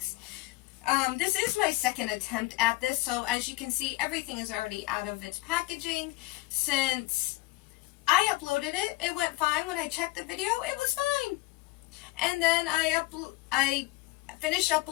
This is my second attempt at this, so as you can see, everything is already out of its packaging. Since I uploaded it, it went fine. When I checked the video, it was fine. And then I finished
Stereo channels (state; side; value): quieter; right; 21.3 dB